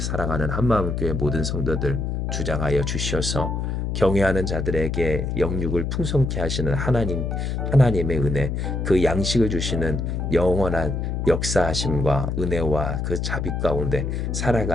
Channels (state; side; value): noise; left; hum, 1 dB below the sound